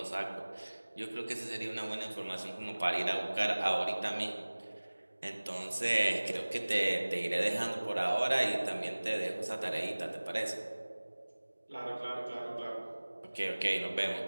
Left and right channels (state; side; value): inverted; both; correlation -1.00